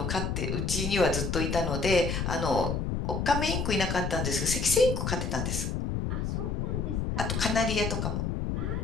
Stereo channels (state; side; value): noise; left; rumble, 1 dB below the sound